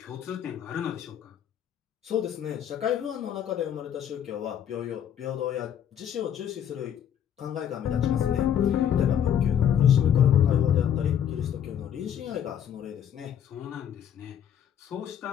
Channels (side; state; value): right; quieter; 9.3 dB